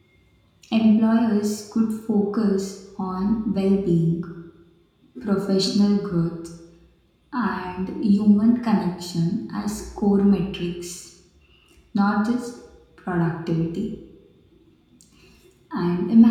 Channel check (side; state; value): both; identical; correlation 1.00